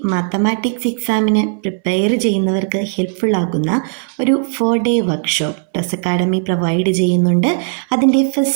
mathematics എക്സാമിന് prepare ചെയ്യുന്നവർക്ക് helpful ആകുന്ന ഒരു 4-day വർക്ക്ഷോപ്പ് ടസ് അക്കാഡമി പ്രൊവൈഡ് ചെയ്യുന്നുണ്ട്. അതിൻ്റെ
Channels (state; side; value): silent; left; 65 dB below the other